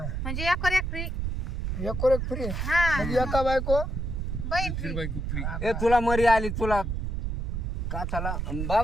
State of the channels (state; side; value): noise; right; rumble, 2 dB below the sound